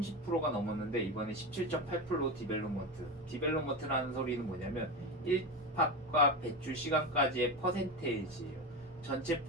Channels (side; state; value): both; normal; correlation 0.19